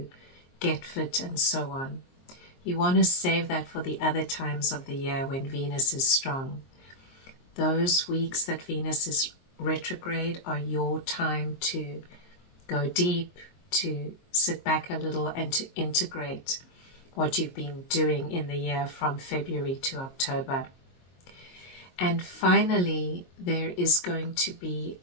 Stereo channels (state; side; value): late; right; 22 ms